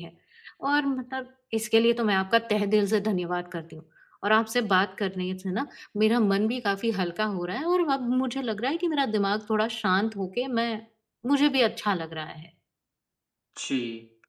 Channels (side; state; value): both; identical; correlation 1.00